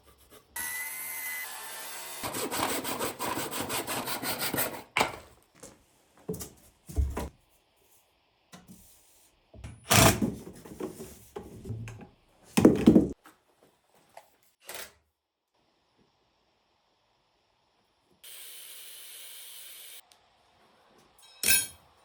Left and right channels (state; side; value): identical; both; correlation 1.00